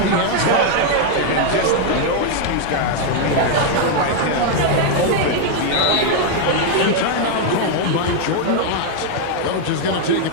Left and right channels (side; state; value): both; different; correlation 0.00